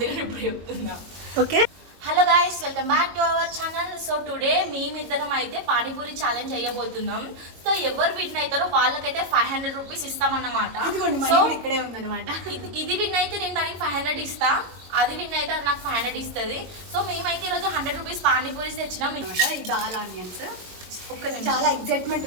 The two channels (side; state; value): left; late; 22 ms